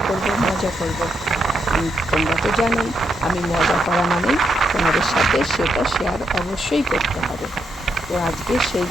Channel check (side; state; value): both; normal; correlation 0.80